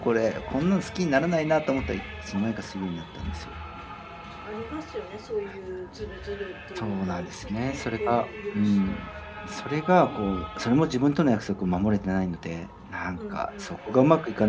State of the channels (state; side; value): identical; both; correlation 1.00